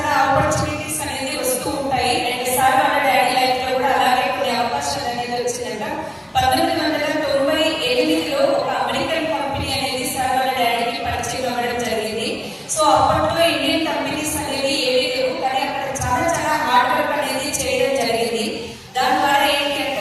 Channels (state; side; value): identical; both; correlation 1.00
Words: ఆపర్చునిటీస్ అనేది వస్తూ ఉంటాయి. అండ్ సార్ వాళ్ళ డాడీ లైఫ్ లో కూడా అలాగే కొన్ని అవకాశాలు అనేది వచ్చిందంట. 1998లో ఒక అమెరికన్ కంపెనీ అనేది సార్ వాళ్ళ డాడీకి పరిచయం అవ్వడం జరిగింది. సో అప్పట్లో ఇండియన్ కంపెనీస్ అనేవి ఏవీ లేవు, కానీ అక్కడ చాలా చాలా హార్డ్ వర్క్ అనేది చేయడం జరిగింది. దాని ద్వారా ఏంటి అంటే